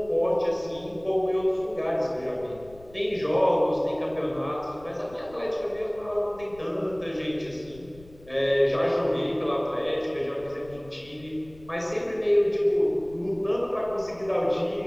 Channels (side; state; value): left; noise; rumble, 22 dB below the sound